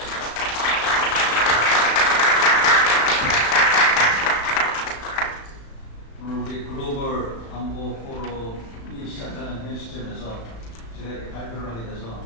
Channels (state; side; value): late; right; 35 ms